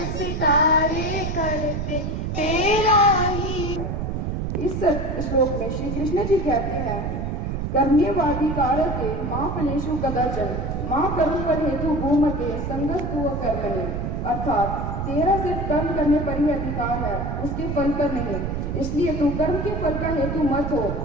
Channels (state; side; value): noise; right; rumble, 2 dB below the sound